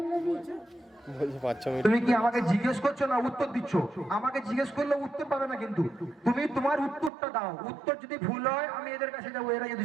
নবী। তুমি কি আমাকে জিজ্ঞেস করছো না উত্তর দিচ্ছ? আমাকে জিজ্ঞেস করলে উত্তর পাবে না, কিন্তু তুমি তোমার উত্তরটা দাও। উত্তর যদি ভুল হয় আমি এদের কাছে যাবো, এরা যদি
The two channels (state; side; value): drops out; left; at 7.1 s